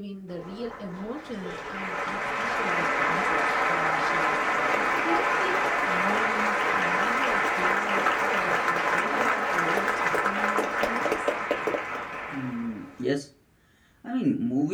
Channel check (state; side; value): identical; both; correlation 1.00